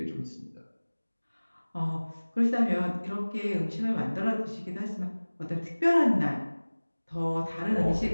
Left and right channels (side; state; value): both; inverted; correlation -1.00